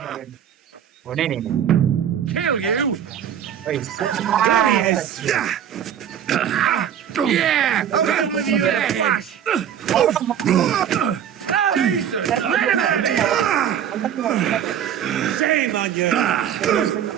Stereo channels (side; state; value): left; quieter; 9.4 dB